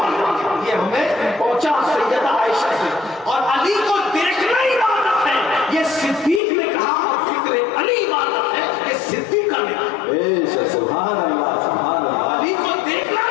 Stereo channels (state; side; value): drops out; right; at 6.4 s